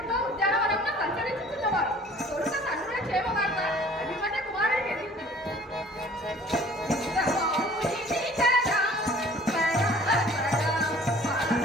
ఉద్యానవనంలో సంచరించుతున్నవారు. తొలుత తండ్రుల క్షేమవార్త అభిమన్య కుమారుడికి ఎదిగింది.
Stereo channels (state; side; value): normal; both; correlation 0.51